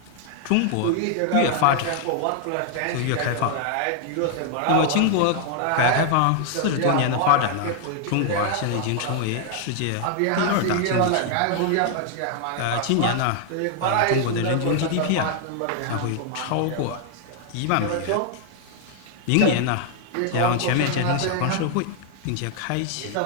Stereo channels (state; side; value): different; both; correlation 0.00